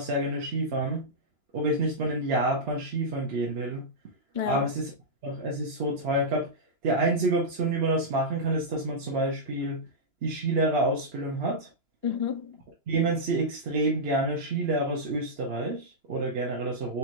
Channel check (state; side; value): late; left; 2.9 ms